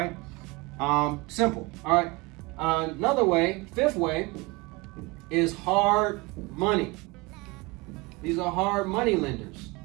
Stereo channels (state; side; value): quieter; left; 24.5 dB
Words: simple. All right. Another way, fifth way, is hard money. These are hard money lenders.